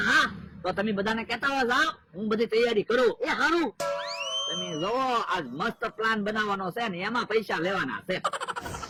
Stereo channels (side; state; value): both; identical; correlation 1.00